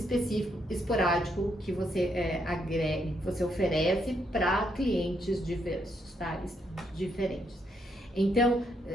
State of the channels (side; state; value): both; normal; correlation 0.76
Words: esporádico, que você agrega, que você oferece para clientes diversos, tá? Diferentes. Então,